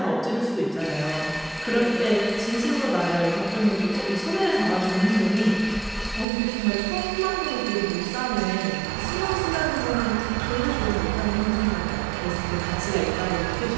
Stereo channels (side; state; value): left; drops out; at 6.2 s